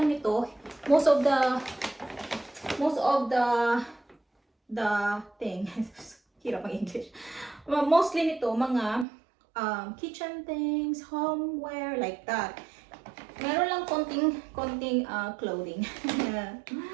nito, most of the thing, hirap ang English. Mostly nito, mga kitchen things, homeware, like that. Meron lang konting clothing.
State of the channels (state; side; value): drops out; left; at 9.1 s